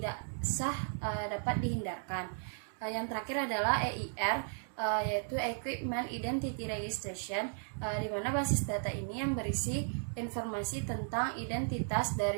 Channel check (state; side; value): silent; left; digital silence